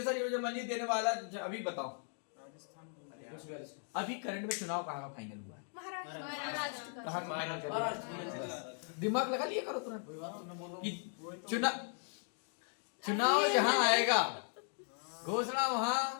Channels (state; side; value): silent; right; 53 dB below the other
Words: योजना मंजूरी देने वाला अभी बताओ। अभी करंट में चुनाव कहाँ का फाइनल हुआ है? कहाँ का फाइनल कर दिया? दिमाग लगा लिया करो तुरंत कि चुनाव जहाँ आएगा घोषणा वहाँ